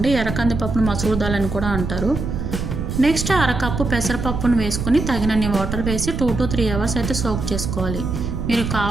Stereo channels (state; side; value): noise; right; rumble, 4 dB below the sound